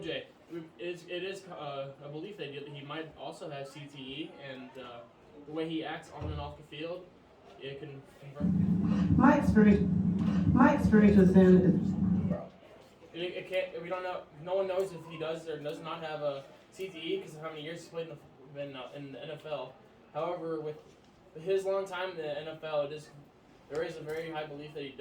it is a belief that he might also have CTE, and the way he acts on and off the field, it can confirm. My experience with him is It can't. We don't know. No one knows if he does or does not have a CTE because of how many years he's played in the NFL. However, with his long time in the NFL, it is there is a very high belief that he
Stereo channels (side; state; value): both; identical; correlation 1.00